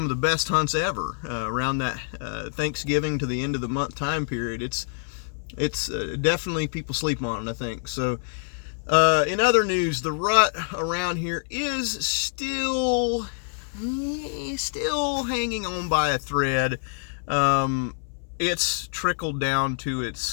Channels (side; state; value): right; silent; 61 dB below the other